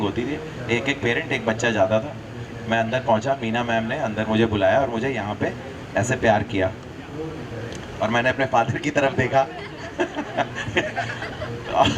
होती थी, एक एक पेरेंट एक बच्चा जाता था। मैं अंदर पहुंचा, मीना मैम ने अंदर मुझे बुलाया और मुझे यहाँ पे ऐसे प्यार किया और मैंने अपने फादर की तरफ देखा।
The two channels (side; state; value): both; identical; correlation 1.00